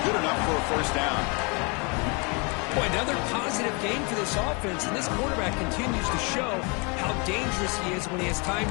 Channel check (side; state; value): right; quieter; 31.8 dB